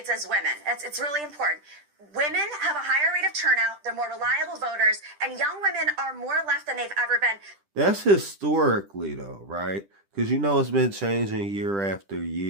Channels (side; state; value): left; late; 10 ms